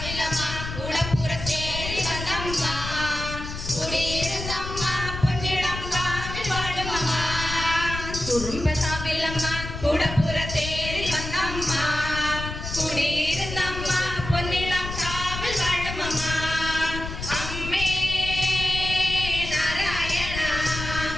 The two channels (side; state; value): left; noise; rumble, 7 dB below the sound